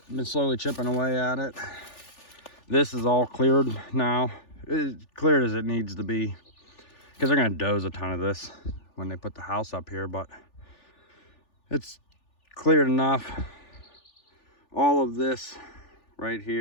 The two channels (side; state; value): right; late; 3.4 ms